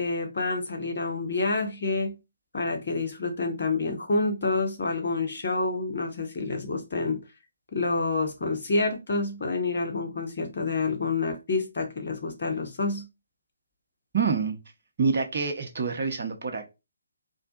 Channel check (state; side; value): inverted; both; correlation -0.61